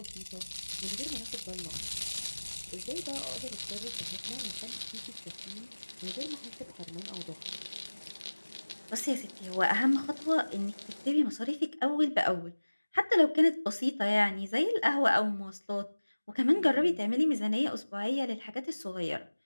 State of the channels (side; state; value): both; inverted; correlation -1.00